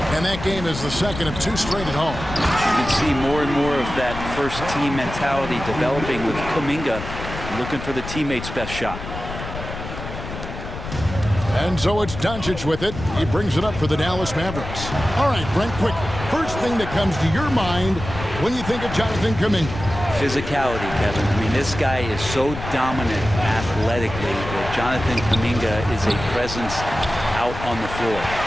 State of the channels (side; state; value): left; noise; rumble, 9 dB below the sound